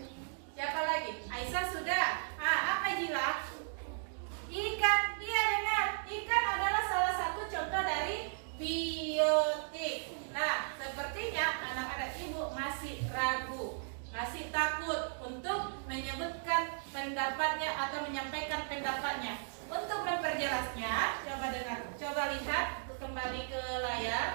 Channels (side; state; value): left; silent; digital silence